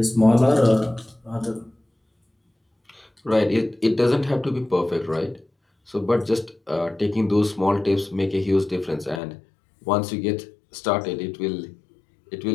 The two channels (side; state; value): right; drops out; at 9.2 s